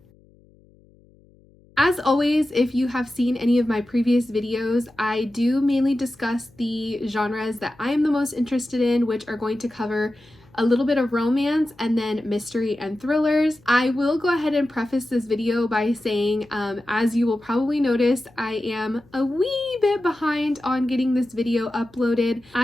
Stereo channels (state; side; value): noise; left; hum, 29 dB below the sound